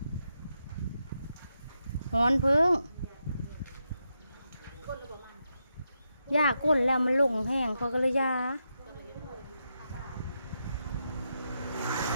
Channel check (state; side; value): inverted; both; correlation -0.85